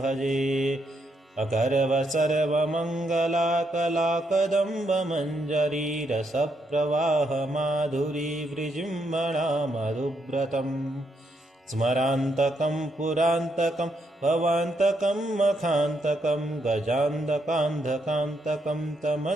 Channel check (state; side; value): normal; both; correlation 0.77